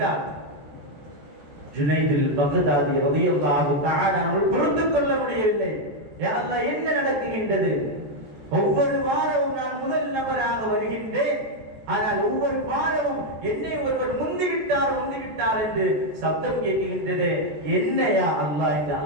ஜுனைதில் பக்தாதி ரலியல்லாஹு தஆலா அவர்கள் பொறுத்துக் கொள்ள முடியவில்லை. யா அல்லாஹ், என்ன நடக்குகின்றது? ஒவ்வொரு வாரமும் நான் முதல் நபராக வருகின்றேன், ஆனால் ஒவ்வொரு வாரமும் என்னை ஒருவர் முந்திவிட்டார் என்று சப்தம் கேட்கின்றது. என்ன யா அல்லாஹ் என்று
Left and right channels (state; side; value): late; left; 14 ms